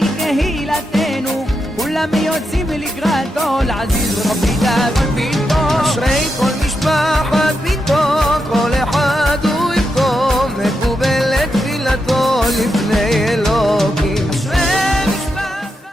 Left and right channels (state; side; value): normal; both; correlation 0.85